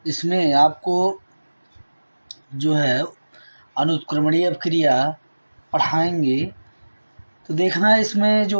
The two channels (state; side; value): inverted; both; correlation -1.00